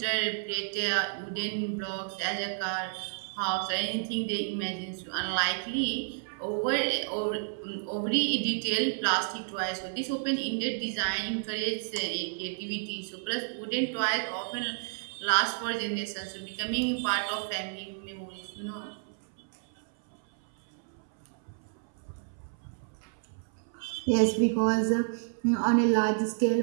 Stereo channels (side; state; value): left; silent; 57 dB below the other